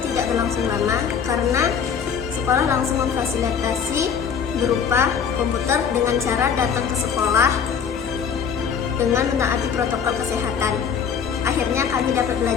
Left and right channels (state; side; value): quieter; right; 7.2 dB